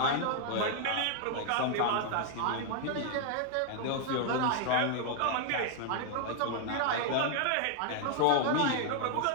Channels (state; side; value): different; both; correlation 0.00